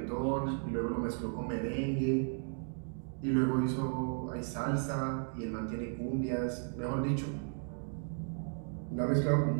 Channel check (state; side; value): silent; left; 55 dB below the other